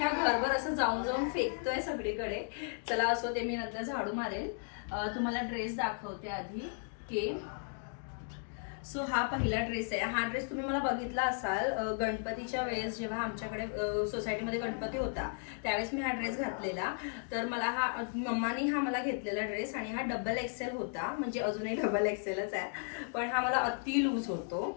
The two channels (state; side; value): silent; right; 54 dB below the other